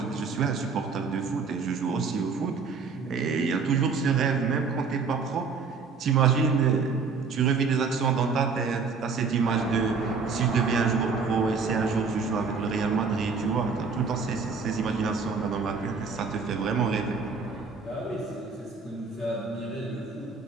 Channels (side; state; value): left; quieter; 5.0 dB